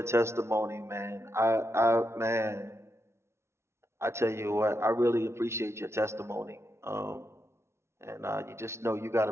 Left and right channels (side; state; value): left; late; 0.13 ms